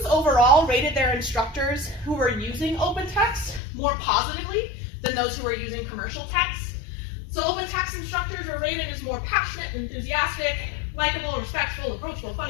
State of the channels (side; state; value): right; drops out; at 3.6 s